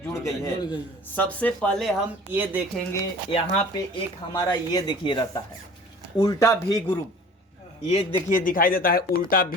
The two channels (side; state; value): both; normal; correlation 0.45